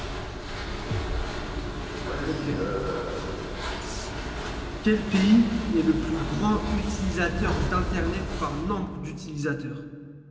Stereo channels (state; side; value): identical; both; correlation 1.00